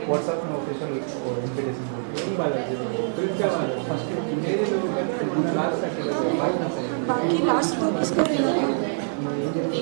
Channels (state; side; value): silent; left; digital silence